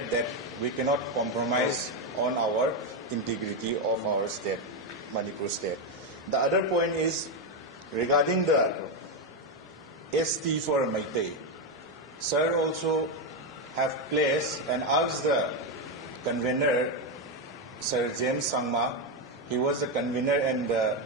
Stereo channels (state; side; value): normal; both; correlation 0.07